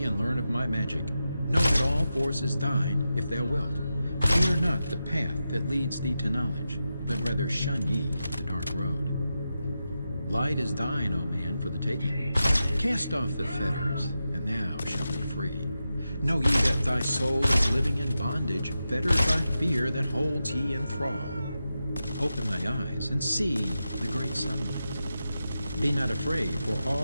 and learn of my magic. Know that all force is thine, if thou wilt. Fear not the path that leads thee to knowledge, but rather shun ye the dark road. Light is thine, O man, for the taking. Cast off the fetters, and thou shalt be free. Know ye that thy soul is living in bondage, fettered by fear that holds ye in thrall. Open thy eyes and see the great sunlight. Be not afraid, for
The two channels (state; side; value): inverted; both; correlation -0.90